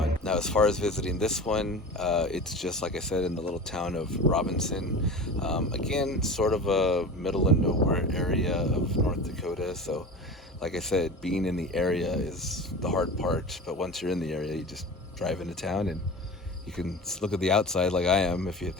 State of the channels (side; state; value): both; normal; correlation 0.33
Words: Now, as far as visiting this one, it's just like I said, in the little town of Robinson. Again, sort of a middle of nowhere area of North Dakota. So, like I said, being in the area is the hard part. But once you're in the area, you just drive into town and you can look at the outside like I am. If